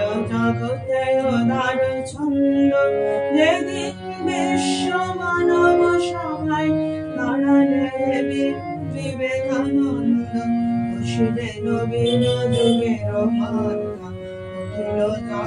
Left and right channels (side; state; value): both; identical; correlation 1.00